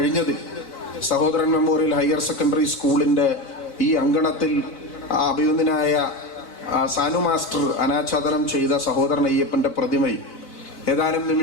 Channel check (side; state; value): right; late; 4.1 ms